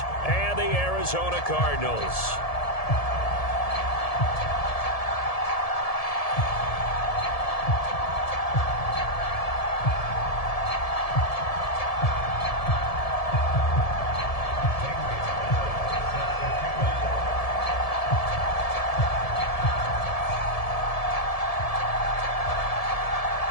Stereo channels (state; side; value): late; right; 1.7 ms